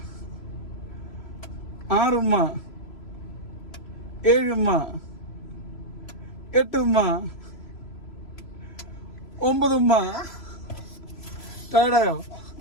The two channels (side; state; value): right; late; 3.0 ms